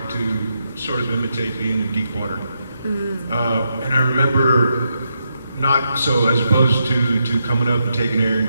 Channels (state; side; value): inverted; both; correlation -0.82